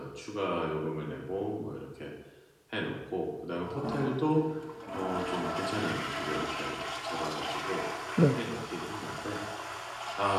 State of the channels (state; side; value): identical; both; correlation 1.00